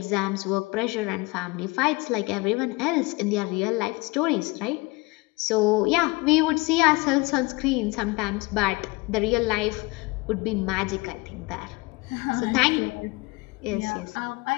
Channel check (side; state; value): right; quieter; 24.8 dB